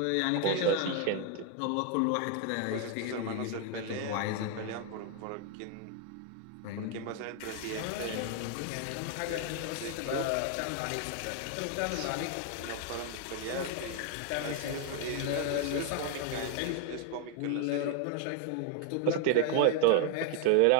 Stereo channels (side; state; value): both; different; correlation 0.01